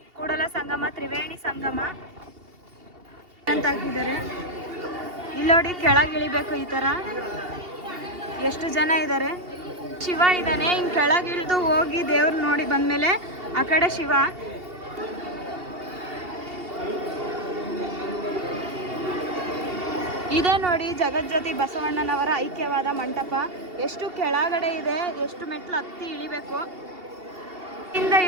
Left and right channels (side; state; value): left; late; 2.8 ms